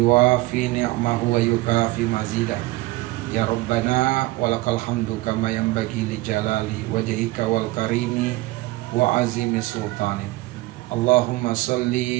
ni'mahu wa yukafi mazidah. Ya Rabbana walakal hamdu kama yanbaghi li jalali wajhika wal karimi wa azimi sultani. Allahumma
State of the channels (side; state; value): left; quieter; 19.6 dB